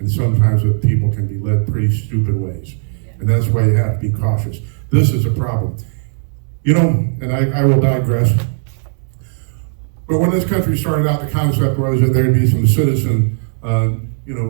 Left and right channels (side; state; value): left; silent; digital silence